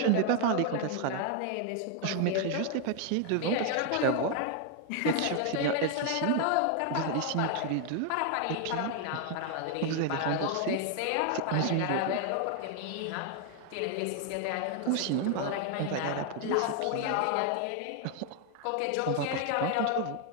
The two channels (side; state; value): both; different; correlation 0.00